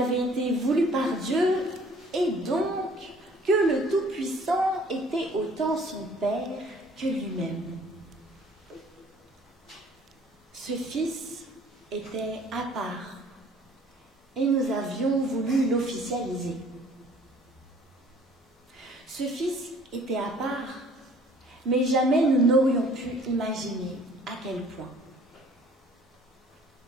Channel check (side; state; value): both; normal; correlation 0.55